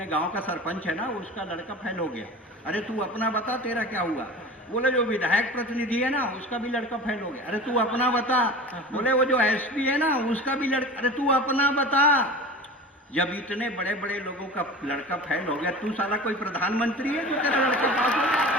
गांव का सरपंच है ना, उसका लड़का फेल हो गया। अरे तू अपना बता तेरा क्या हुआ। बोले जो विधायक प्रतिनिधि है ना, उसका भी लड़का फेल हो गया। अरे तू अपना बता। बोले वो जो एसपी है ना, उसका भी लड़का, अरे तू अपना बता। जब इतने बड़े बड़े लोगों का लड़का फेल हो गया, तू साला कोई प्रधानमंत्री है जो तेरा लड़का पास हो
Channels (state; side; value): normal; both; correlation 0.35